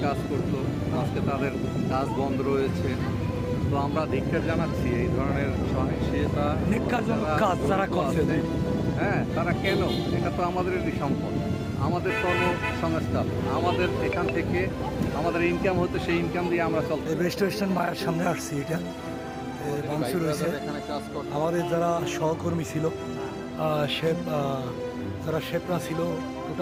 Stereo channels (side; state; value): both; identical; correlation 1.00